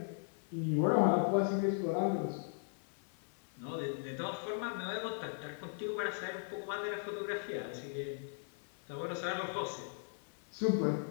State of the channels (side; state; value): right; silent; 52 dB below the other